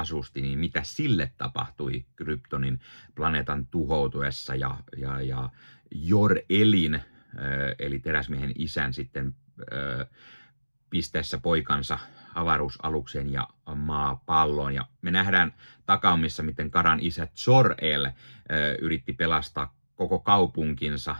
niin mitä sille tapahtui Kryptonin planeetan tuhoutuessa ja Jor-Elin, eli teräsmiehen isän sitten pisteessä poikansa avaruusalukseen ja maapalloon. Ja me nähdään takaumissa, miten Karan isä Jor-El yritti pelastaa koko kaupunkinsa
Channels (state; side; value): inverted; both; correlation -1.00